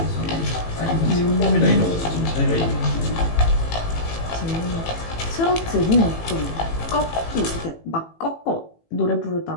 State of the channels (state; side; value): late; right; 18 ms